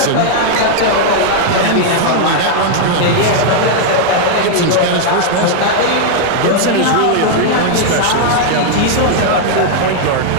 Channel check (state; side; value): different; both; correlation 0.00